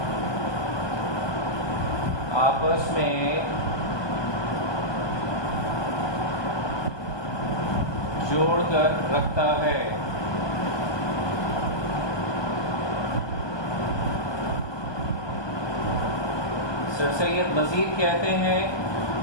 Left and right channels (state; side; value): late; right; 1.2 ms